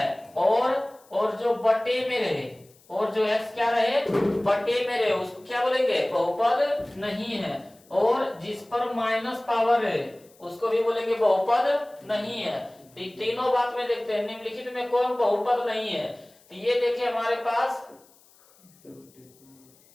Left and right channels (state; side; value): noise; left; hiss, 29 dB below the sound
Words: और जो बटे में रहे, और जो x क्या रहे? बटे में रहे, उसको क्या बोलेंगे? बहुपद नहीं है। और जिस पर माइनस पावर है उसको भी बोलेंगे बहुपद नहीं है। तो तीनों बात में देखते हैं निम्नलिखित में कौन बहुपद नहीं है। तो ये देखिए हमारे पास